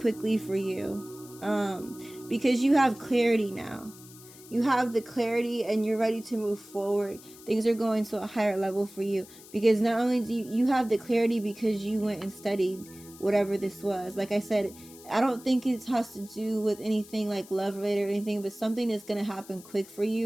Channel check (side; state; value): left; noise; hiss, 20 dB below the sound